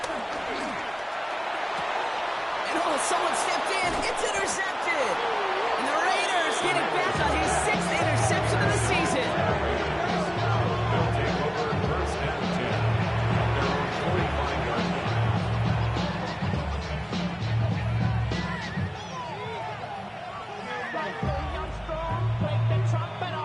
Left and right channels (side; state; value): both; identical; correlation 1.00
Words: And someone stepped in. It's intercepted. And the Raiders get it back on his 6th interception of the season. They'll take over first and 10 at their own 45-yard line.